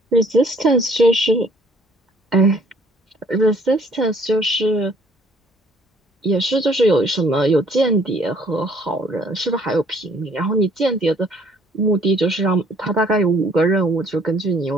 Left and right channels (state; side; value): normal; both; correlation 0.60